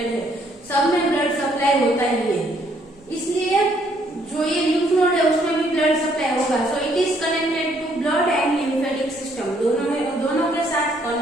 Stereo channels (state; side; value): normal; both; correlation 0.68